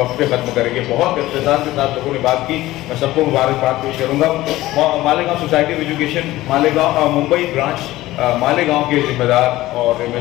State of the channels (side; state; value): right; quieter; 16.9 dB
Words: पे ख़त्म करेंगे। बहुत इख्तिसार के साथ लोगों ने बात की, मैं सबको मुबारकबाद पेश करूँगा। Malegaon society of education Malegaon Mumbai branch Malegaon के जिम्मेदार और